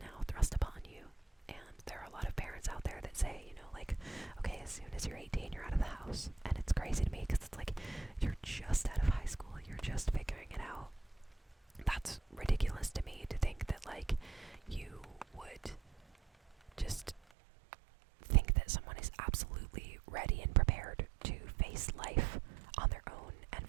thrust upon you. And there are a lot of parents out there that say, like, okay, as soon as you're 18, you're out of the house. And it's crazy to me because it's like, you're just out of high school, you're just figuring it out. That's ridiculous to me, to think that, like, you would just think that someone is absolutely ready and prepared to face life on their own and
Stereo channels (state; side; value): drops out; left; at 17.2 s